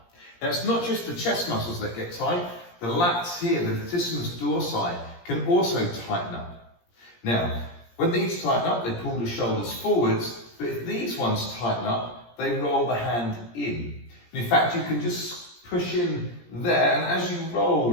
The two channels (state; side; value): late; right; 17 ms